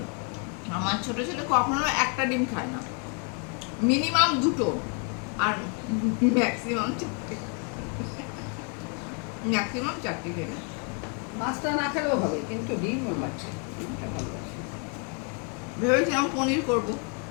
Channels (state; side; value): quieter; right; 37.8 dB